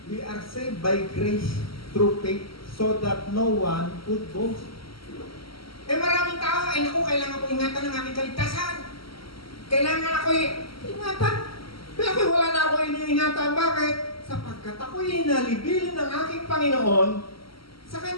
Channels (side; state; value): right; late; 0.75 ms